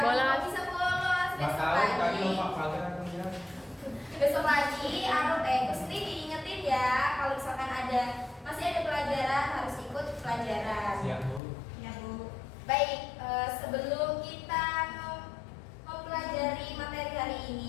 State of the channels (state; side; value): drops out; right; at 11.4 s